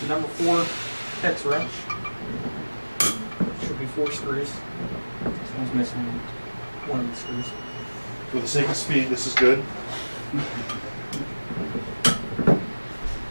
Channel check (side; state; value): both; inverted; correlation -1.00